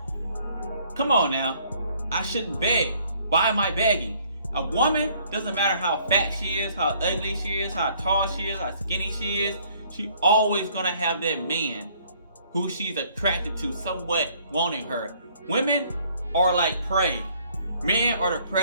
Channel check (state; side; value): inverted; both; correlation -0.61